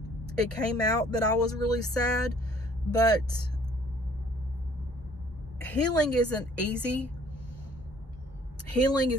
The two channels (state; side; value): normal; both; correlation 0.58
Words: it came out that I was really sad, but healing isn't easy. Healing